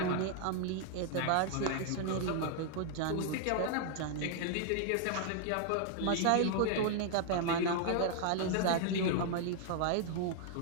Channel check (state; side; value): different; both; correlation 0.00